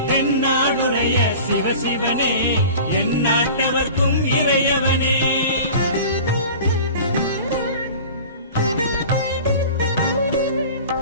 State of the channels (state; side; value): inverted; both; correlation -0.39